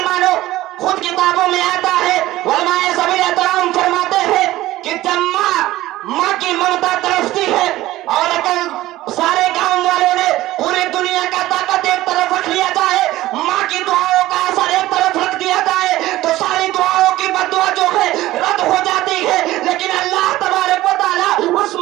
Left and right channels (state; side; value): quieter; left; 16.3 dB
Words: خود کتابوں میں آتا ہے، علماء سبیل احترام فرماتے ہیں کہ جب ماں کی ممتا ترستی ہے اور اگر سارے گاؤں والوں نے پوری دنیا کا طاقت ایک طرف رکھ لیا جائے، ماں کی دعاؤں کا اثر ایک طرف رکھ دیا جائے تو ساری دعاؤں کی بددعا جو ہے رد ہو جاتی ہے، لیکن اللہ تبارک و تعالیٰ اس